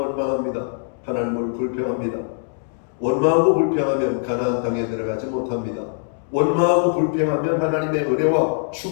하나님을 불평합니다. 원망하고 불평하면 가나안 땅에 들어가지 못합니다. 원망하고 불평하면 하나님의 은혜와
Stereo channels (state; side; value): silent; right; 64 dB below the other